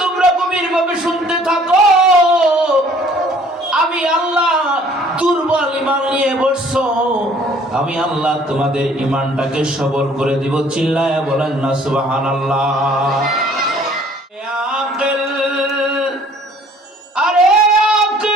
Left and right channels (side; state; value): both; normal; correlation 0.56